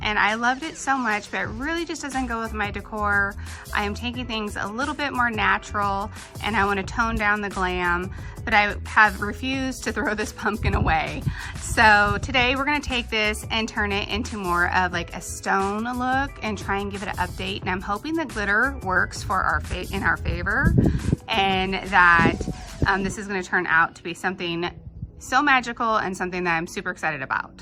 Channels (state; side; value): identical; both; correlation 1.00